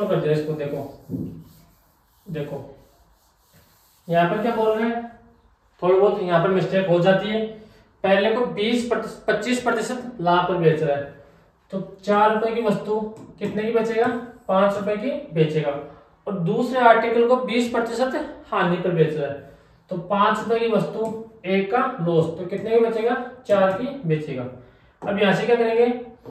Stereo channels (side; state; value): both; identical; correlation 1.00